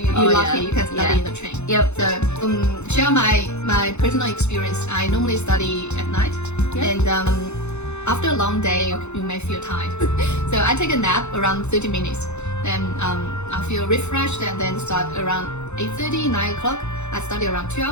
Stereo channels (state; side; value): late; right; 0.82 ms